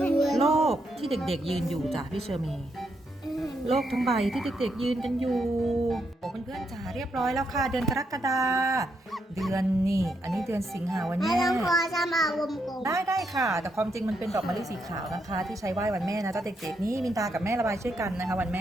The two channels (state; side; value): normal; both; correlation 0.79